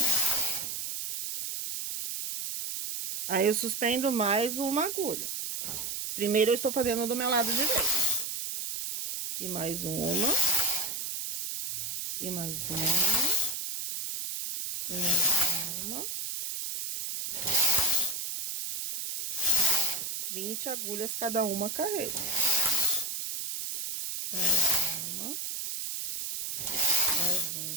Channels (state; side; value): noise; right; hiss, 4 dB below the sound